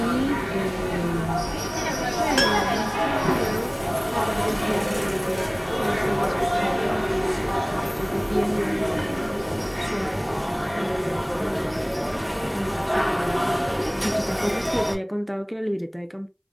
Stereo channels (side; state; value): both; identical; correlation 1.00